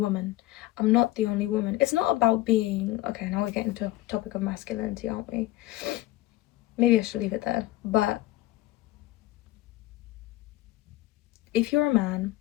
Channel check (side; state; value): right; quieter; 16.6 dB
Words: I'm not the only woman. It's not about being, okay, now we're getting to a topic of masculinity, aren't we? Maybe I should leave it there. But if you're a man